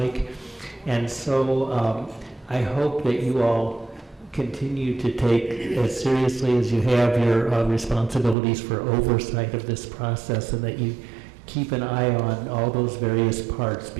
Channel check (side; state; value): left; drops out; at 8.3 s